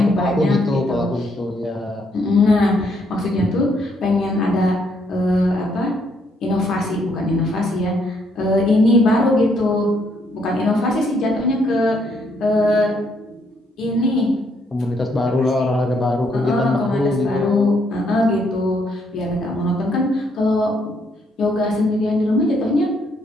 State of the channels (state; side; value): normal; both; correlation 0.72